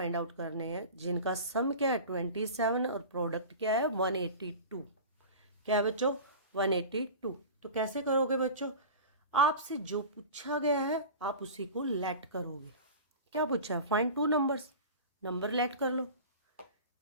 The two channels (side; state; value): both; inverted; correlation -0.34